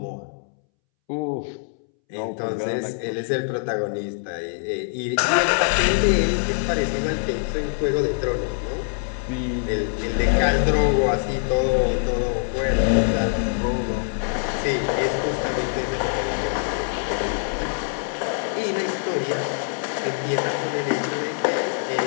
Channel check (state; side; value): silent; right; 63 dB below the other